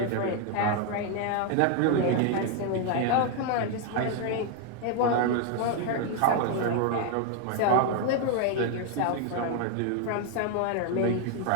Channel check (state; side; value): different; both; correlation 0.00